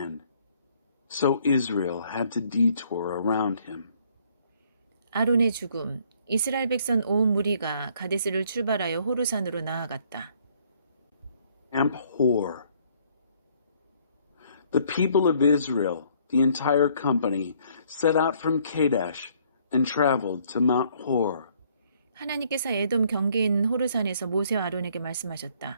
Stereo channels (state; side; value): inverted; both; correlation -0.63